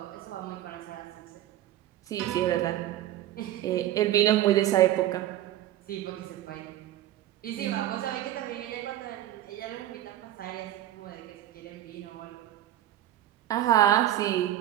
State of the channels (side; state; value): left; quieter; 13.1 dB